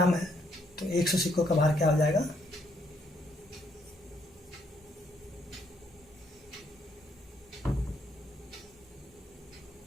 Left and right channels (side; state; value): both; normal; correlation 0.71